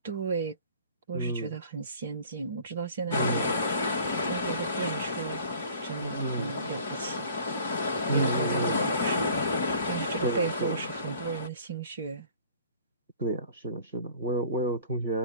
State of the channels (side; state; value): both; inverted; correlation -0.50